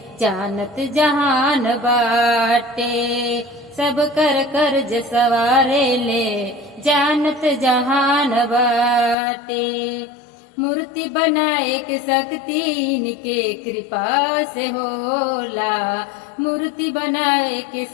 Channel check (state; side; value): drops out; right; at 9.2 s